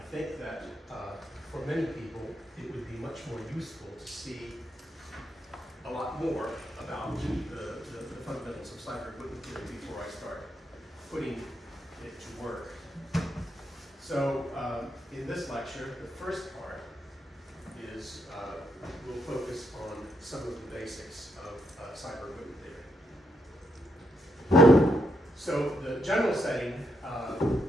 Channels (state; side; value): normal; both; correlation 0.79